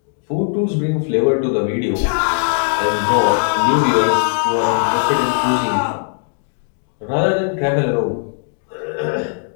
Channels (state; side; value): silent; right; 65 dB below the other